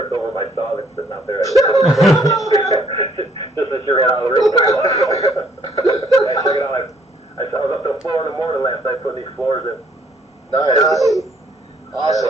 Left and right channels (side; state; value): both; normal; correlation 0.64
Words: over my saw that's sitting out there. Just as she ran out of the room. Check it out. I was up to the floor in the morning last night putting these floors in. Nice.